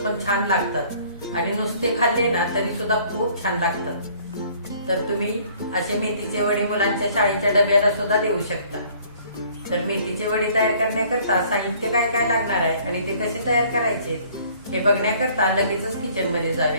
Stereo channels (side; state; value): both; inverted; correlation -0.57